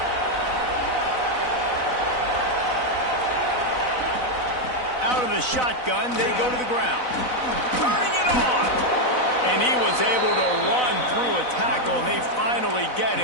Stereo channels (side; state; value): right; late; 4.0 ms